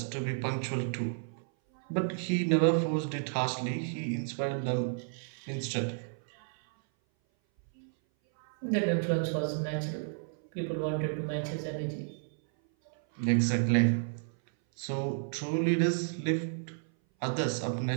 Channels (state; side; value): silent; left; 56 dB below the other